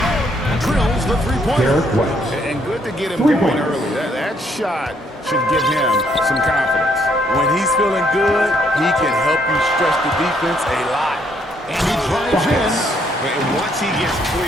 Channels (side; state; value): both; normal; correlation 0.70